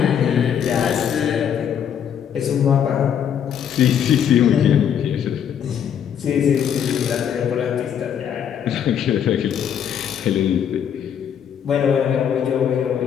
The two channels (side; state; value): right; quieter; 8.7 dB